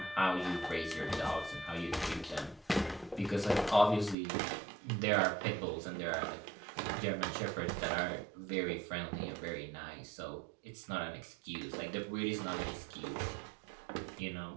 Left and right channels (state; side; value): drops out; left; at 4.2 s